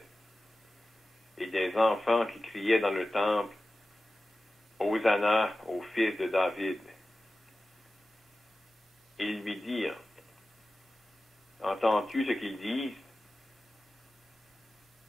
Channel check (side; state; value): both; normal; correlation 0.95